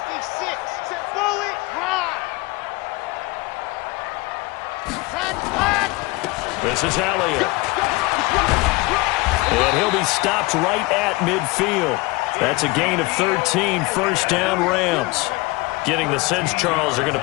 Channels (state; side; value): quieter; right; 22.8 dB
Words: Set bullet. High. Flat. This is Elliott. And he'll be stopped right at midfield. That's a gain of 13. 1st down Rams. Getting the sense, Charles, are going to